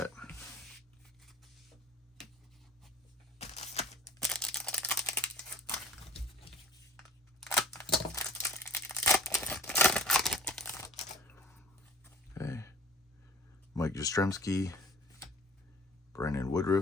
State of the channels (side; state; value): both; normal; correlation 0.48